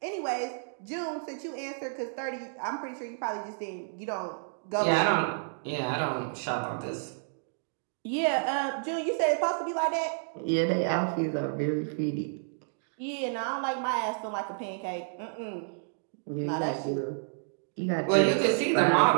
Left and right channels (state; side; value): silent; left; digital silence